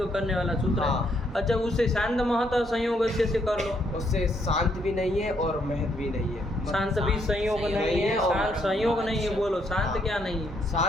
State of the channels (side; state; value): both; normal; correlation 0.72